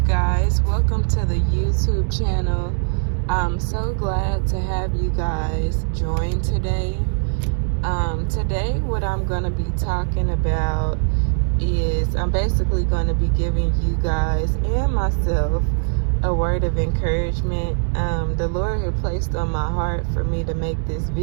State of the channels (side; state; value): left; silent; 65 dB below the other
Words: welcome to the YouTube channel. I'm so glad to have you guys join today. Today what I'm going to be talking about is I'm basically going to be giving you guys and myself a word of encouragement. The Lord had placed on my heart for me to make this